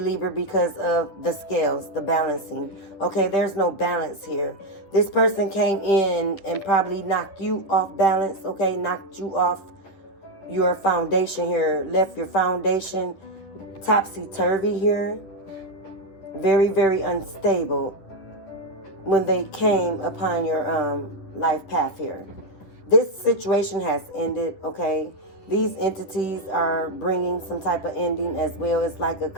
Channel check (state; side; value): late; right; 10 ms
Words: because of the scales, the balancing. Okay, there's no balance here. This person came in and probably knocked you off balance, okay? Knocked you off your foundation here. Left your foundation topsy-turvy here. Very, very unstable when they came upon your life path here. This situation has ended, okay? These entities are bringing some type of ending as well. It's like a